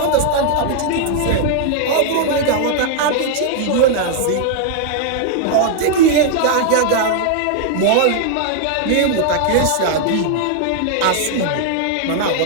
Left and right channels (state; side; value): different; both; correlation 0.00